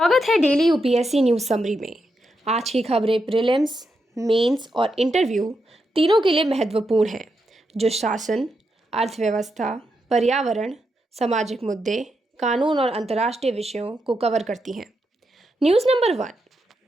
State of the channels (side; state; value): both; normal; correlation 0.84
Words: स्वागत है daily UPSC news summary में। आज की खबरें प्रीलिम्स, मेंस और इंटरव्यू तीनों के लिए महत्वपूर्ण हैं, जो शासन, अर्थव्यवस्था, पर्यावरण, सामाजिक मुद्दे, कानून और अंतर्राष्ट्रीय विषयों को कवर करती हैं। News number 1।